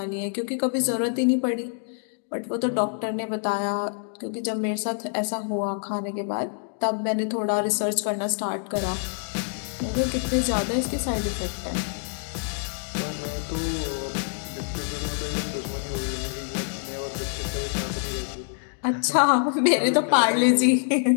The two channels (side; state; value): right; silent; 61 dB below the other